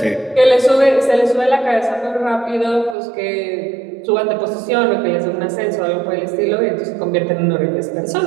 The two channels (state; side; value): drops out; left; at 3.0 s